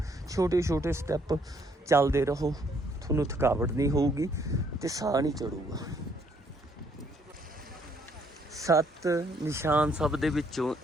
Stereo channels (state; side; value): normal; both; correlation 0.68